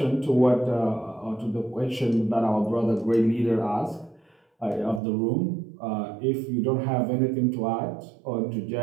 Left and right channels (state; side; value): drops out; left; at 5.0 s